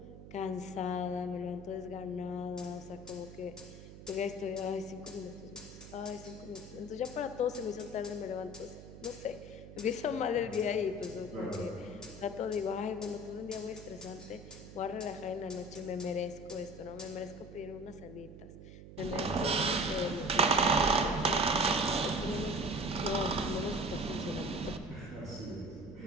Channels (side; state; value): right; noise; hum, 15 dB below the sound